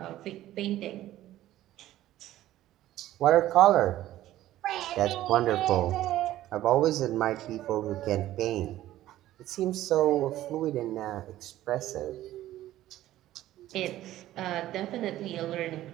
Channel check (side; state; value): left; quieter; 14.3 dB